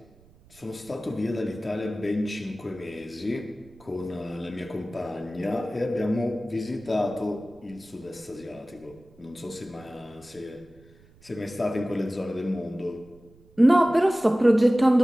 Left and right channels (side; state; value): right; noise; rumble, 27 dB below the sound